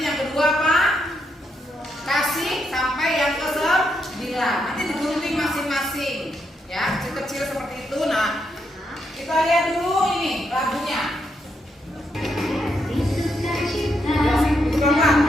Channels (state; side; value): normal; both; correlation 0.79